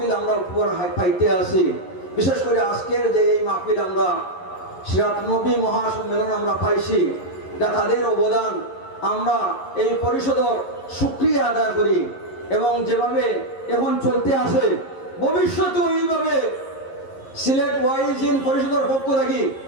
আমরা উপহার পাইতে আসি। বিশেষ করে আজকের যে এই মাহফিল আমরা সিরাতুন নবী মহাসম্মেলন আমরা পাইছি, এটা তাদের অবদান। আমরা এই পরিষদের শুকরিয়া আদায় করি এবং যেভাবে এখন চলতে আসে ভবিষ্যতে এইভাবে সিলেট ওয়াইজিন পরিষদের পক্ষ থেকে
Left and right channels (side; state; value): right; late; 11 ms